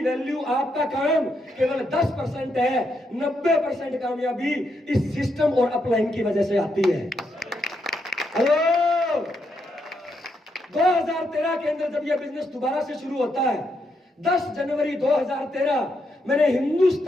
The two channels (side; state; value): both; normal; correlation 0.80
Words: आपका काम केवल 10% है। 90% कामयाबी इस सिस्टम और अपलाइन की वजह से आती है। हेलो, 2013 के अंदर जब यह बिजनेस दोबारा से शुरू होता है, 10 जनवरी 2013, मैंने